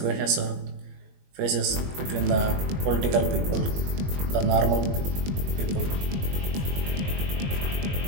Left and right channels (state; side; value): late; left; 21 ms